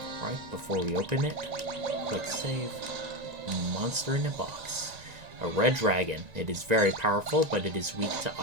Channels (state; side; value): late; left; 1.9 ms